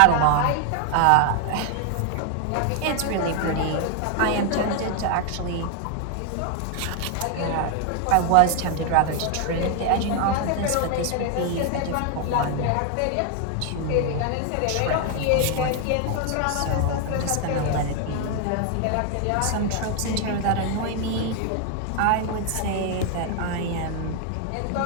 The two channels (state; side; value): different; both; correlation 0.01